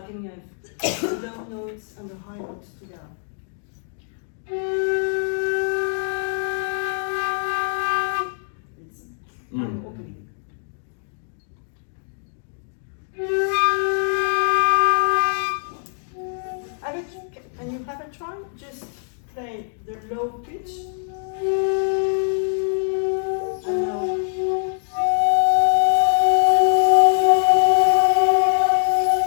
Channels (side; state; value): right; silent; digital silence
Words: can have the low notes and the high notes together. I'm opening. Can you have a try? Just play the low pitch. And now.